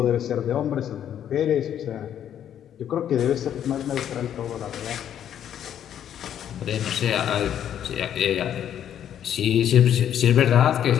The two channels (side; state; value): right; quieter; 10.0 dB